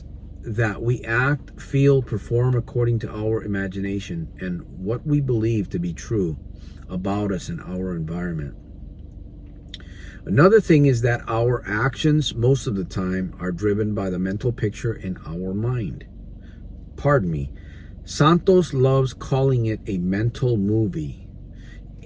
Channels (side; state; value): both; identical; correlation 1.00